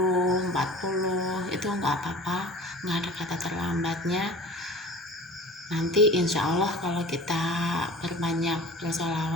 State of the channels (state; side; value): normal; both; correlation 0.40